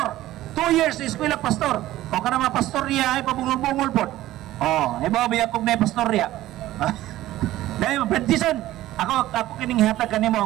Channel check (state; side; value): quieter; left; 15.2 dB